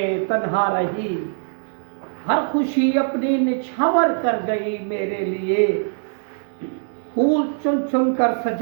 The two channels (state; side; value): silent; left; 64 dB below the other